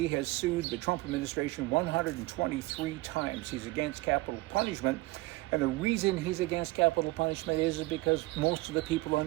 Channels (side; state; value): left; quieter; 20.9 dB